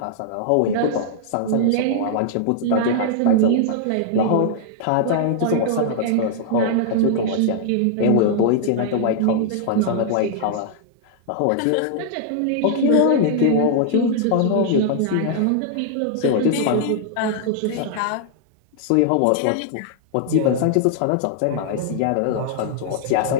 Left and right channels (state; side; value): different; both; correlation -0.01